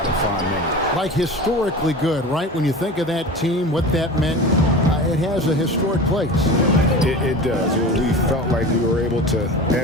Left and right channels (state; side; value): normal; both; correlation 0.33